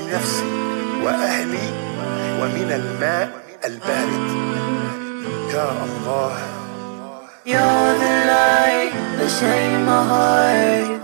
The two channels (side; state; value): left; silent; digital silence